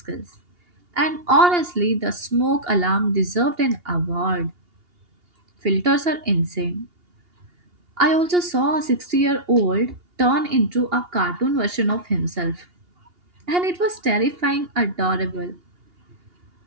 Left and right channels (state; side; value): late; left; 2.8 ms